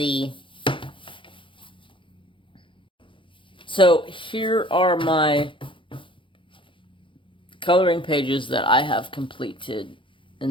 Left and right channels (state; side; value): late; right; 0.25 ms